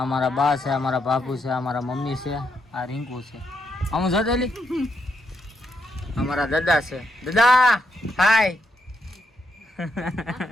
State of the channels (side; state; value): both; normal; correlation 0.79